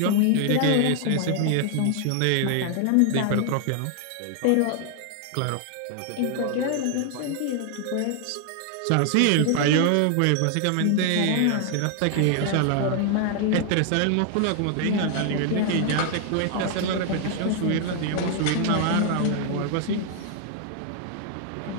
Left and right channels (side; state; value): both; different; correlation 0.00